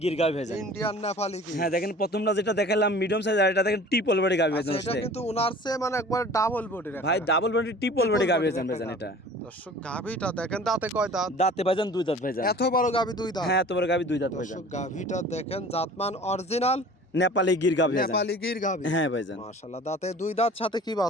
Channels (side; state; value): both; normal; correlation 0.44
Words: গির গাভি ভাইজান। ইন্ডিয়ান নেপালি কি? হ্যাঁ দেখেন প্রথমটা যেটা দেখালাম মিডিয়াম সাইজ, আর এটা দেখেন ট্রিপল বডি গাভি আচ্ছা, ভাইজান। এটা কিন্তু উনার চেয়ে মানে একবার ডাবল বডির ভাই ডাবল বডি ট্রিপল বডি গাভি ভাইজান ভাইজান এটা। দর্শক গাভীটা দেখেন, দাঁতে কয় দাঁত? দাঁতে ভাইজান 2 দাঁত ভাইজান। এত বড় গাভী 2 দাঁত? হ্যাঁ এত বড় গাভি 2 দাঁত ভাইজান। দর্শক গাভীটা দেখেন, জাতমান অরিজিনাল নেপালি গির গাভি ভাইজান। নেপালি গির গাভী। হ্যাঁ ভাইজান। মাশাআল্লাহ, দাঁতে 2 দাঁত, সাথে কি